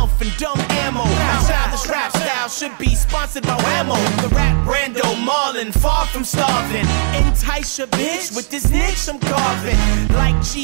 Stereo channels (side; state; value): left; silent; digital silence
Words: and dumb ammo. The childish rap style should be sponsored by Whammo. The rap Brando Marlin, far from starving. Entice your bitch with this niche I'm carving. Like